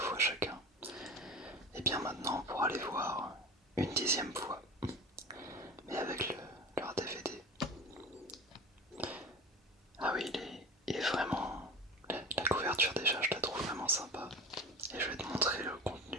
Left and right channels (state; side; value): normal; both; correlation 0.32